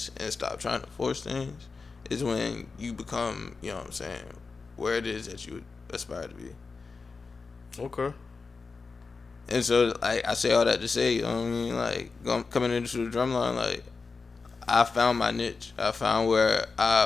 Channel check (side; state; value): right; quieter; 4.5 dB